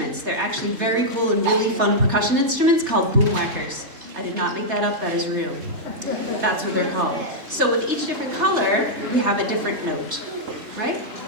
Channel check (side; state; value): left; late; 3.4 ms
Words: They're actually very cool and really fun percussion instruments called boomwhackers. I did not make that up, that is real. That's what they're called. So with each different color, we have a different note, right?